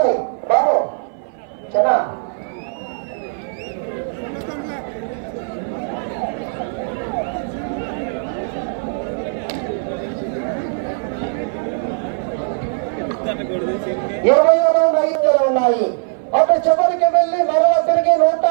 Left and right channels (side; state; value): left; silent; 57 dB below the other